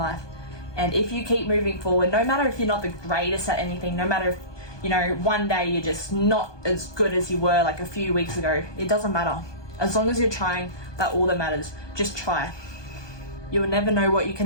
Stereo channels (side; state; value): right; late; 1.2 ms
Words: And if you keep moving forward, no matter if you're not the greatest at anything, no matter if, you know, one day you're just not as good as you were like a few weeks ago, it doesn't matter. As long as you're trying, that's all that matters. Just try. You will never know what you